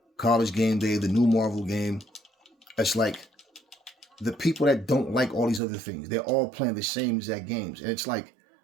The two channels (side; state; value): left; drops out; at 5.6 s